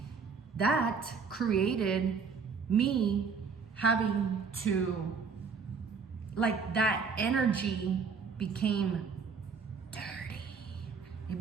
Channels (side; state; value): left; quieter; 5.4 dB